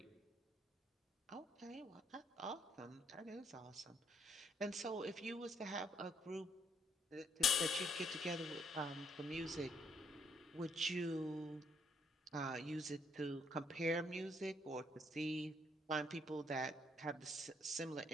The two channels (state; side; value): normal; both; correlation 0.70